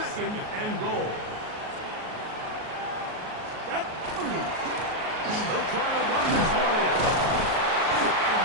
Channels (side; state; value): left; late; 38 ms